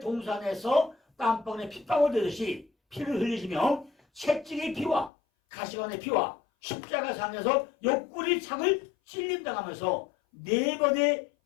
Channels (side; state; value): right; drops out; at 5.1 s